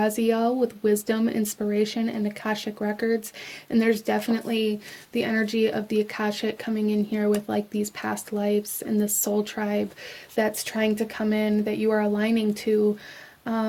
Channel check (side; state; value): both; identical; correlation 1.00